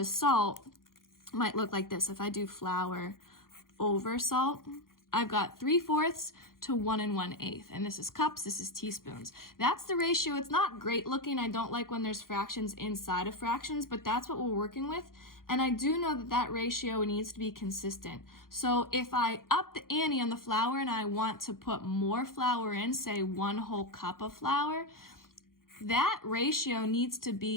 salt might look like this. If I do flour over salt, I've got 3/4 to 1 1/8, and this is cups, this is teaspoons. That's the ratio. It's not great looking. I don't like when there's fractions inside of fractions, but that's what we're working with. And I do know that that ratio needs to be consistent. So if I up the ante on the flour and I want to put more flour in, say 1 whole cup of flour, that ratio needs to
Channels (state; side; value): late; right; 0.91 ms